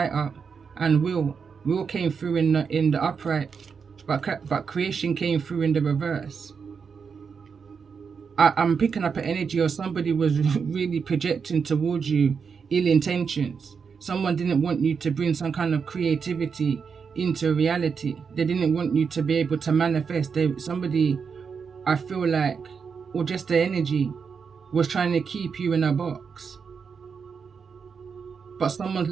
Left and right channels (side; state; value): left; quieter; 6.0 dB